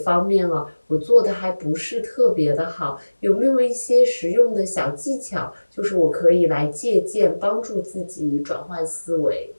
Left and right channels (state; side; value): inverted; both; correlation -1.00